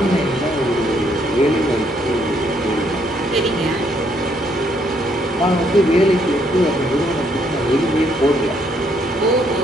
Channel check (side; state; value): both; normal; correlation 0.70